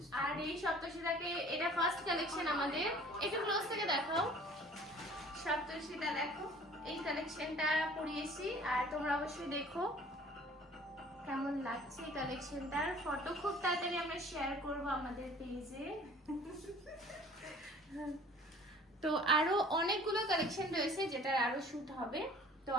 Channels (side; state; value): both; normal; correlation 0.49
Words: আর এই সপ্তর্ষিদাকে এটা ফার্স্ট কালেকশন আমাদের, একটু ক্লোজ থেকে দেখাও। সপ্তর্ষিদা দেখো এই কালেকশনটা পরিয়েছি, আর তোমরা অবশ্যই দেখো কেমন লাগছে এই কালেকশনটার ফটো খুব তাড়াতাড়ি আমরা শেয়ার করব আমাদের পেজে। তো আরো অনেকগুলো কালেকশন রয়েছে যেটার আরো শুট হবে, তো